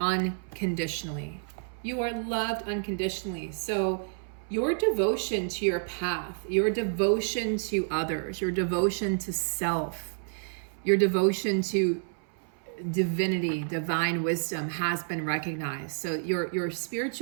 You are loved unconditionally. So your devotion to your path, your devotion to others, your devotion to self, your devotion to divinity, divine wisdom has been recognized. So your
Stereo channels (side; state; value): left; silent; 58 dB below the other